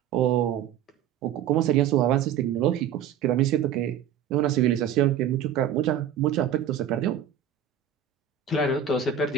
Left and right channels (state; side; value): quieter; left; 9.1 dB